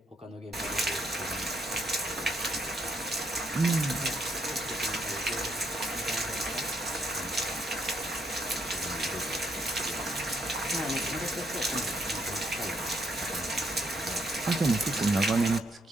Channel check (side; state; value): both; normal; correlation 0.73